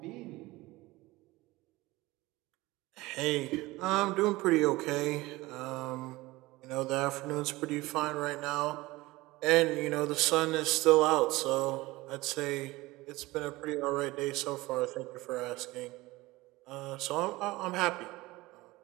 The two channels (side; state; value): left; quieter; 20.1 dB